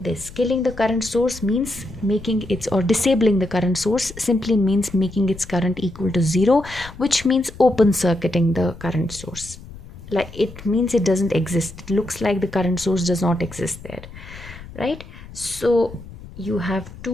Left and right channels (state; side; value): noise; left; rumble, 16 dB below the sound